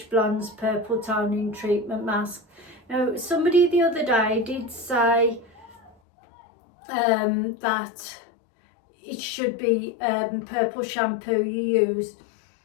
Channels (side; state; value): right; drops out; at 5.9 s